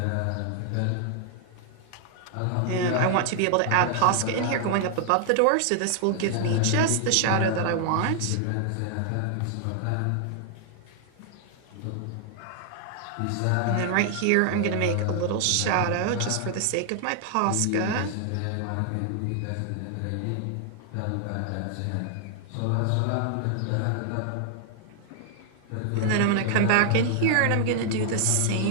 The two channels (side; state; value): both; different; correlation 0.00